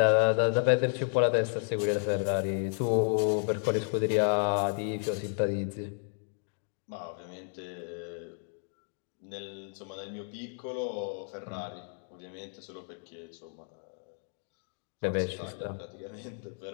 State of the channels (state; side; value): silent; right; 56 dB below the other